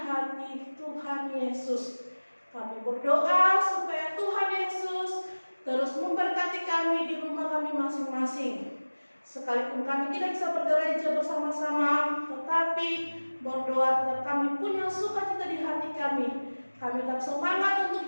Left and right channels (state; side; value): inverted; both; correlation -1.00